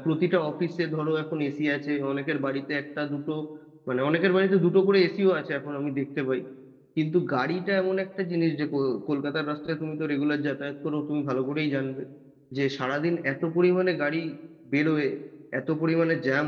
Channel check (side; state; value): both; identical; correlation 1.00